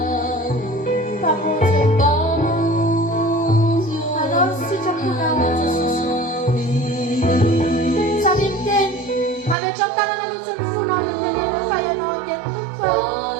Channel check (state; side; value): drops out; left; at 9.6 s